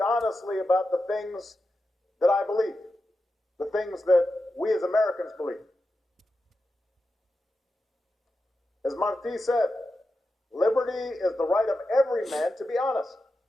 about the things that I believe, the things that we as Americans believe. As Martí said, liberty is the right of every man to be honest,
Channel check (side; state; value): both; normal; correlation 0.90